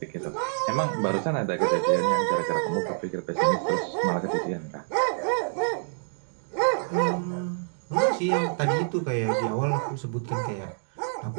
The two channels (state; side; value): silent; left; digital silence